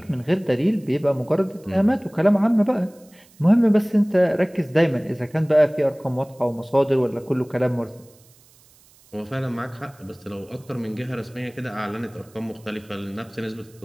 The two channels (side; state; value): right; noise; hiss, 29 dB below the sound